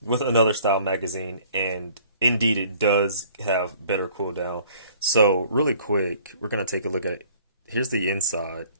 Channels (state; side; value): inverted; both; correlation -0.55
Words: another style magazine, and indeed it does have better cooldown. So really quick, we're gonna take a look at here's the inside